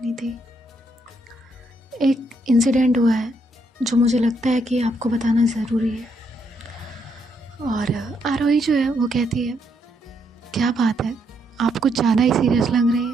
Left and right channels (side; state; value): both; normal; correlation 0.75